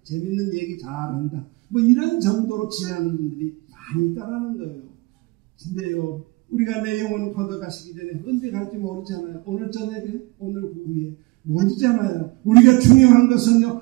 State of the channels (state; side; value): quieter; left; 23.9 dB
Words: 재밌는 얘기 잘한다. 뭐 이런 정도로 지나는 분들이 많이 있다라는 거예요. 근데요, 우리가 내 영혼 걷어가시기 전에 언제 갈지 모르잖아요. 오늘 저녁에, 오늘 후에 모르잖아요. 우리가 중요한